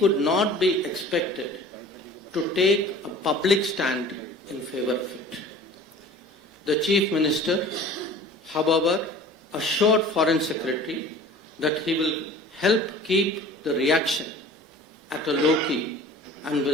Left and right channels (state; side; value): normal; both; correlation 0.44